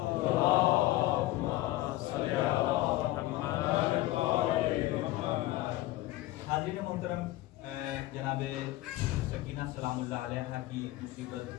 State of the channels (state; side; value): quieter; right; 16.8 dB